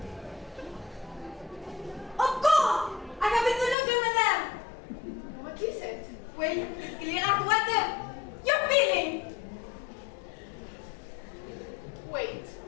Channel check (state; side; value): drops out; right; at 3.8 s